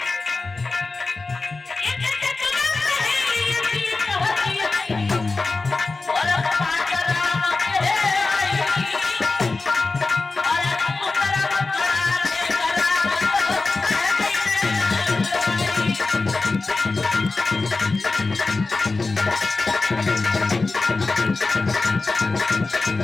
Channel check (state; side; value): quieter; right; 3.7 dB